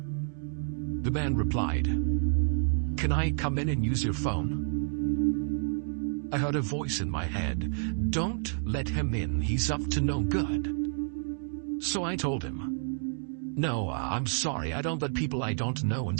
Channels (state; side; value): silent; left; digital silence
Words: The man replied, "Can I come in and use your phone?" I heard a voice in my head, "Don't let him in, he's up to no good." So I told him, "No, I'm sorry, I don't let people I don't know